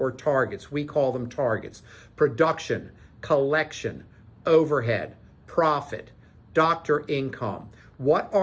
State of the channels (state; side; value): identical; both; correlation 1.00